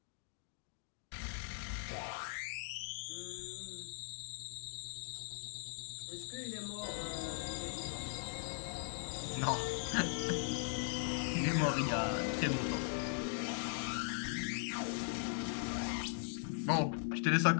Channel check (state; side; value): silent; right; digital silence